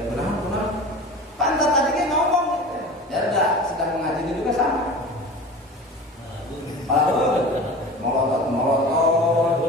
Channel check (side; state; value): both; normal; correlation 0.36